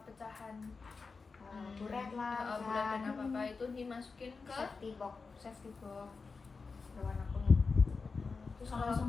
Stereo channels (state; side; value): quieter; right; 4.5 dB